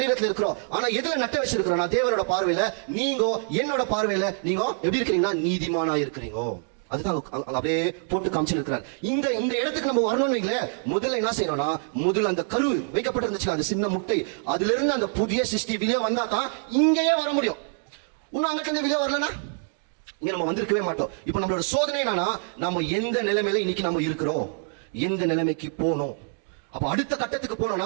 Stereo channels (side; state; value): left; silent; 56 dB below the other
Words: இருக்கிறோம். ஆனா எதுல நட்ட வச்சிருக்கிறோம்? நான் தேவனோட பார்வையில, நீங்க என்னோட பார்வையில நீங்க எப்படி இருக்கிறீங்கன்னா நீதிமானா இருக்கிறீங்க. அதுதான் அப்படியே போட்டு காமிச்சிருக்கிறார். இந்த இடத்துக்கு நம்ம வரணும்னு வைங்களேன், முதல்ல என்ன செய்யணும்னா, முதல்ல அந்த கரு வைக்கப்பட்டிருந்துச்சு அந்த சின்ன முட்டை, அதுல இருந்து அந்த புதிய சிருஷ்டி வெளியே வந்தா தான் இங்கேயே வர முடியும். இன்னும் அங்கிட்ட இருந்து வெளியே வரலன்னா இங்க நம்ம வந்திருக்கவே மாட்டோம். இப்ப நம்மளோட சோதனை என்னன்னா, நம்ம எந்த நிலைமையில இன்னைக்கு நம்ம இருக்கிறோம், எந்த நிலைமைக்கு போனோம். அப்ப அடுத்த கட்டத்துக்கு போனோம்னா